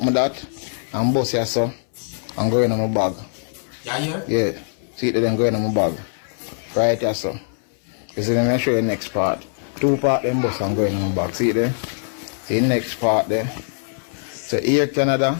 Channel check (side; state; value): right; silent; 62 dB below the other